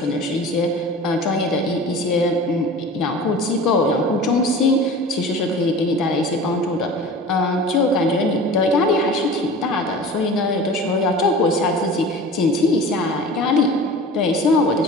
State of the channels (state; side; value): normal; both; correlation 0.38